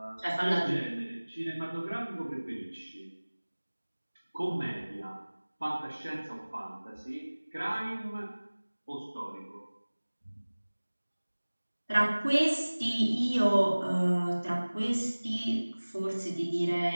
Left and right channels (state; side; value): inverted; both; correlation -1.00